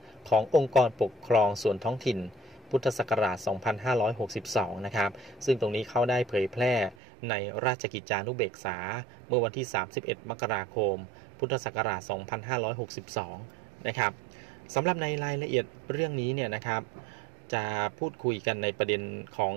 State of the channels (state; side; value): drops out; left; at 7.0 s